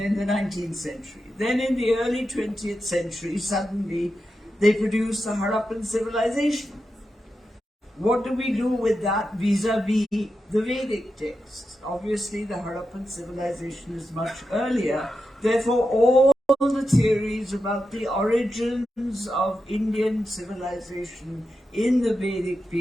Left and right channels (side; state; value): both; normal; correlation 0.89